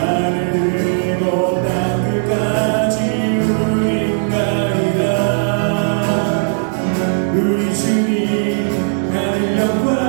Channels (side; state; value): left; silent; 62 dB below the other